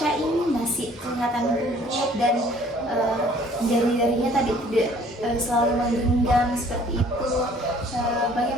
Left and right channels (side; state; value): both; normal; correlation 0.56